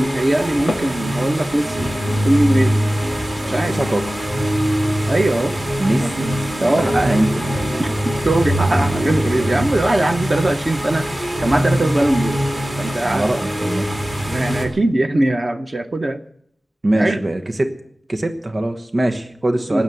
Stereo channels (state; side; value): normal; both; correlation 0.96